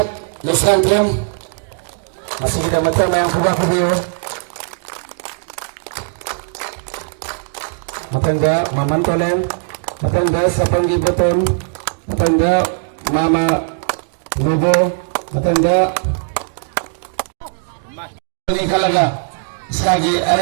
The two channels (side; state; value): left; silent; digital silence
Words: लसकते masih kita macam yang kubah video matangga mamantolen matangga sapanggi beton matangga mama nubo matangga ini kalaga sekali ada